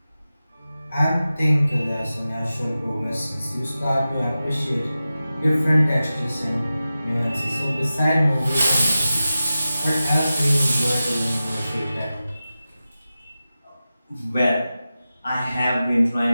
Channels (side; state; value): both; inverted; correlation -0.94